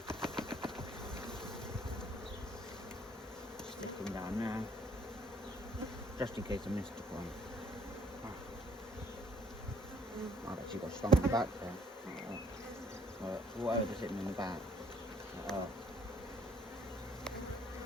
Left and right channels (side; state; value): both; normal; correlation 0.64